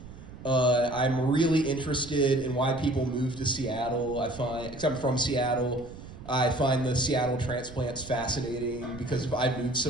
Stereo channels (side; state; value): right; noise; rumble, 15 dB below the sound